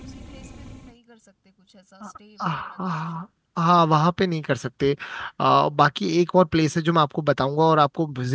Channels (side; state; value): both; identical; correlation 1.00